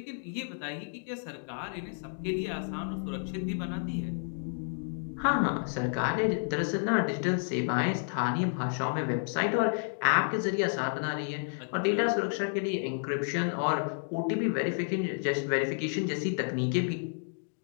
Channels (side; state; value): right; silent; digital silence